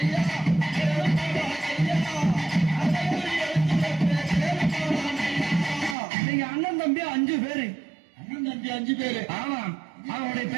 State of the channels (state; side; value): drops out; left; at 6.0 s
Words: நீங்க அண்ணன் தம்பி 5 பேரு. அண்ணன் தம்பி 5 பேரு. ஆமாம். அவனுடைய